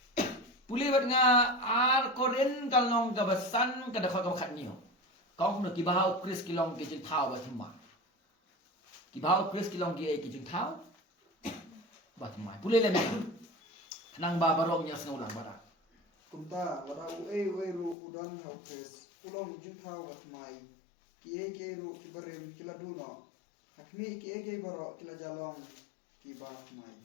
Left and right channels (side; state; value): right; drops out; at 17.9 s